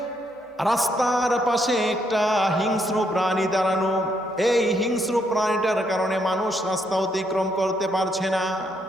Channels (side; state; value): both; normal; correlation 0.74